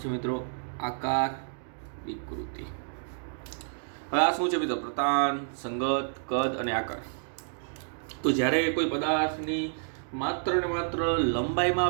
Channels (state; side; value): silent; left; digital silence